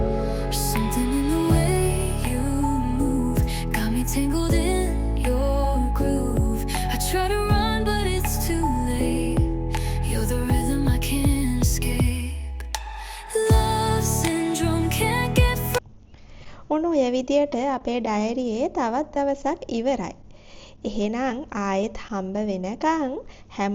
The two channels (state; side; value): identical; both; correlation 1.00